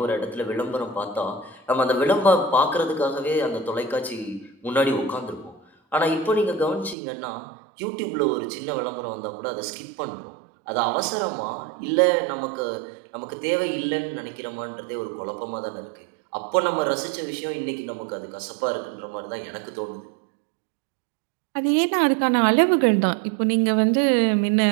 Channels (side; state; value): left; drops out; at 7.0 s